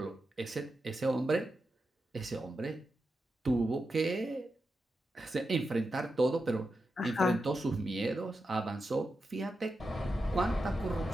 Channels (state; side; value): normal; both; correlation 0.88